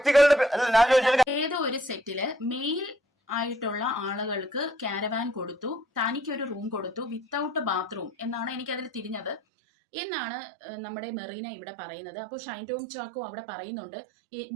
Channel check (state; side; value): drops out; left; at 9.4 s